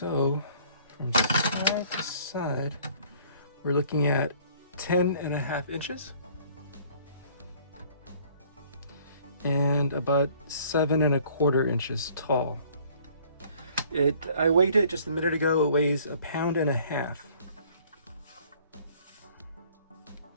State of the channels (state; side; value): inverted; both; correlation -0.56